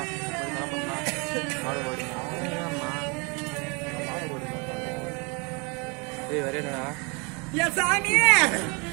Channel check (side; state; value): left; quieter; 31.2 dB